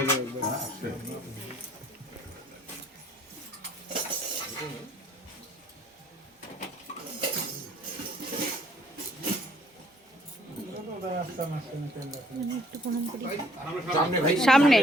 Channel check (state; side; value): normal; both; correlation 0.61